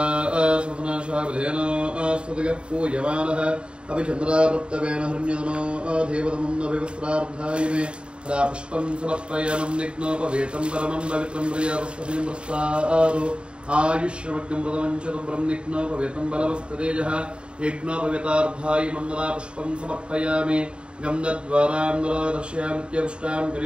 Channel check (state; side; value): late; left; 0.054 ms